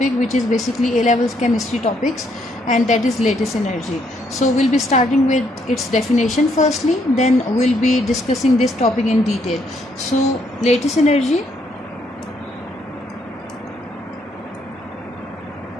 which is basically A-levels chemistry topics, and that is lattice energy. So we'll be starting with its definition firstly, then we'll be discussing this topic in detail. So lattice energy,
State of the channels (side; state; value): both; normal; correlation 0.72